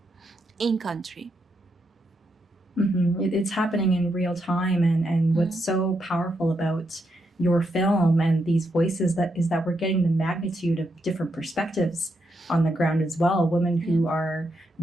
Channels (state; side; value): normal; both; correlation 0.81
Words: in country. It's happening in real time, and what's so powerful about your film and these voices is that we're getting the magnitude of different perspectives on the ground as well. Women who are